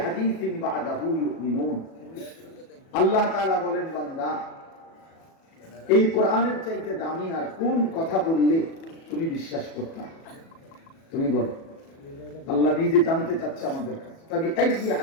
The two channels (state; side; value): late; right; 37 ms